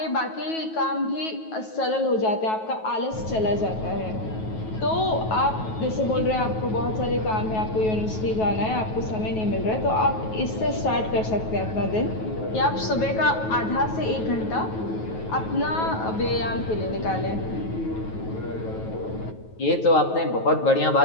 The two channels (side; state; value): right; late; 9.3 ms